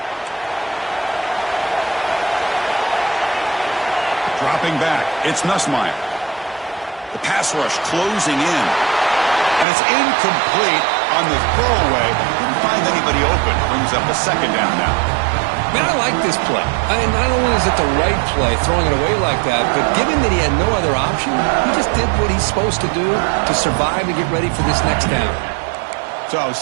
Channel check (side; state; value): left; drops out; at 9.7 s